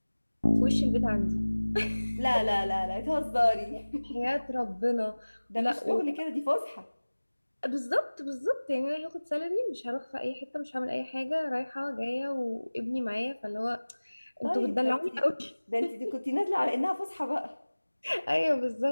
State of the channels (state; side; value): inverted; both; correlation -1.00